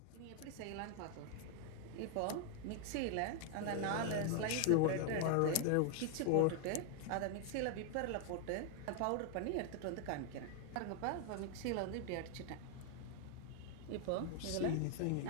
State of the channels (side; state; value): both; different; correlation 0.00